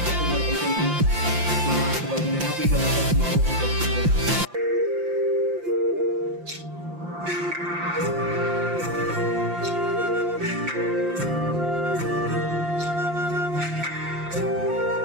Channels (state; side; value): late; left; 5.8 ms